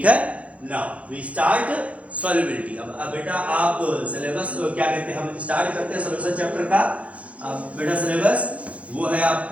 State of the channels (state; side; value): late; left; 0.065 ms